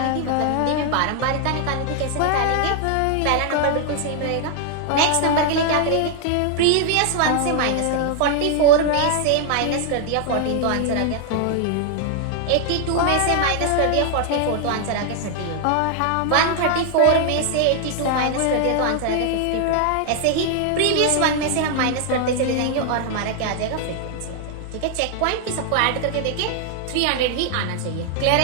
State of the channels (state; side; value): different; both; correlation 0.00